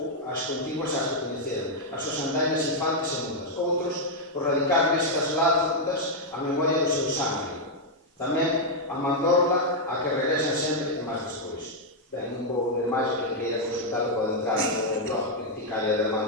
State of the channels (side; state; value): both; normal; correlation -0.02